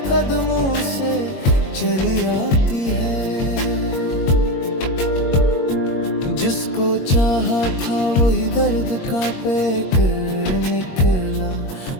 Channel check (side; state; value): right; late; 22 ms